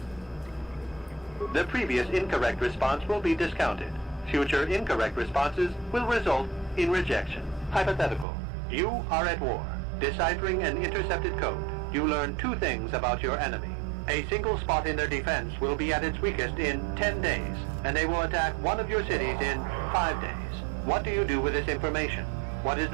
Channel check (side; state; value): left; drops out; at 8.2 s